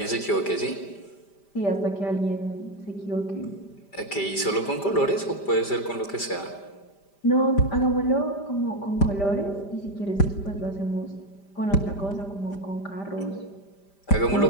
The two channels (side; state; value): right; late; 5.0 ms